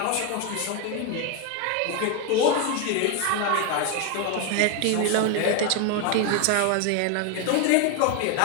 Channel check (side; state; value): both; different; correlation 0.01